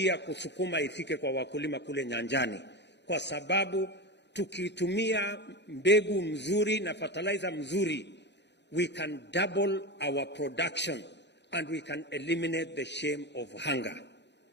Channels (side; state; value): right; late; 0.50 ms